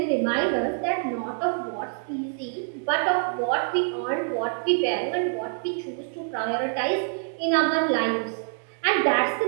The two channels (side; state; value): left; silent; digital silence